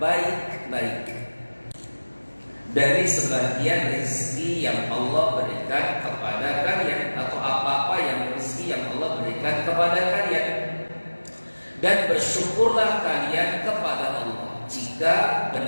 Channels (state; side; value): inverted; both; correlation -1.00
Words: dari sebagian rezeki yang Allah berikan kepada kalian, atau apa-apa yang rezeki yang Allah berikan kepada kalian, dan bersyukurlah kalian kepada Allah jika